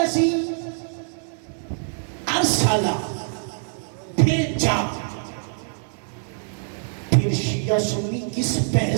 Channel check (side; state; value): left; silent; 62 dB below the other